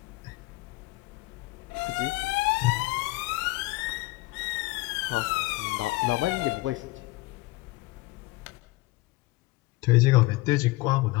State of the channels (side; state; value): right; quieter; 21.5 dB